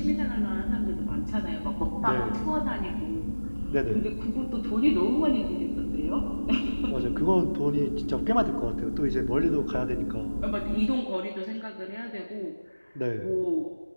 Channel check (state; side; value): inverted; both; correlation -1.00